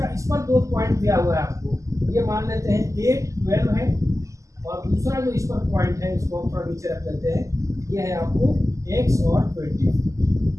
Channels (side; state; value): left; late; 0.16 ms